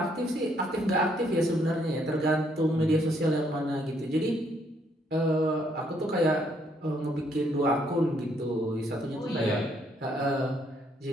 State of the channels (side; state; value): both; normal; correlation 0.70